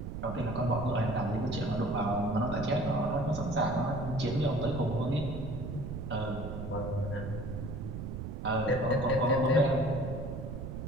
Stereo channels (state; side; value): noise; right; rumble, 6 dB below the sound